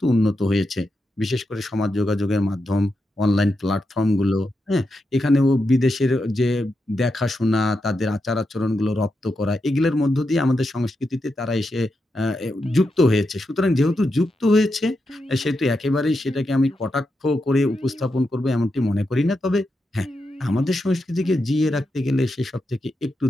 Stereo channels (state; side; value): normal; both; correlation 0.86